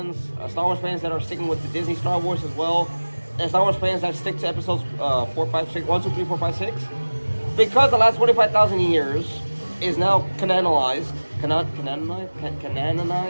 that are sticking with the Disney Star Wars as well, and Star Wars fans that stick to episodes 4, 5, 6, 1, 2, 3, 4, 5, 6, because the last 25,000 years is now canonized. It's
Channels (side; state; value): both; inverted; correlation -1.00